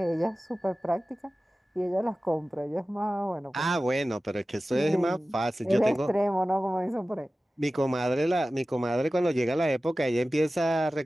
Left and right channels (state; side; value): normal; both; correlation 0.96